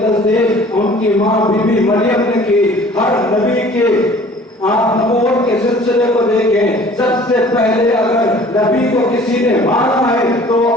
تصدیق ان کی ماں بی بی مریم نے کی۔ ہر نبی کے آپ نبوت کے سلسلے کو دیکھیں، سب سے پہلے اگر نبی کو کسی نے مانا ہے تو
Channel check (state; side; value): normal; both; correlation 0.50